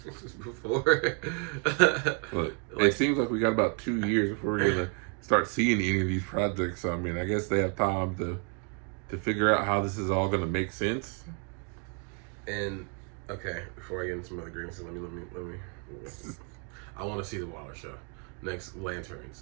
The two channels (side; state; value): left; quieter; 36.1 dB